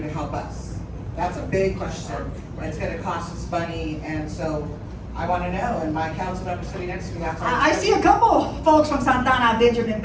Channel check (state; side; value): identical; both; correlation 1.00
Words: to help us? That's a big question. It's going to cost us money, and so I want to know. And my council member sitting next to me, that's I see a couple folks from Santana, Benjamin